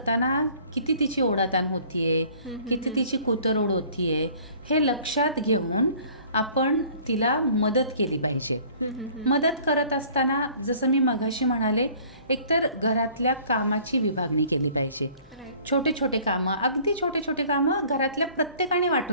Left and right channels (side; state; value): both; inverted; correlation -0.52